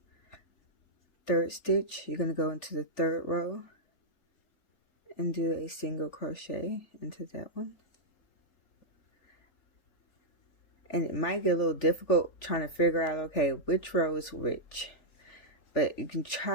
Third stitch, you're going to go into the third row and do a single crochet into that one. And it might get a little difficult trying to figure out, okay, which row is which. But you can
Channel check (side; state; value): right; late; 3.5 ms